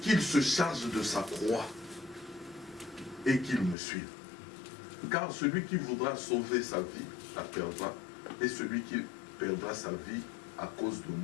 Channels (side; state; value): right; drops out; at 3.8 s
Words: qu'il se charge de sa croix et qu'il me suive. Car celui qui voudra sauver sa vie la perdra, et celui qui perdra sa vie à cause de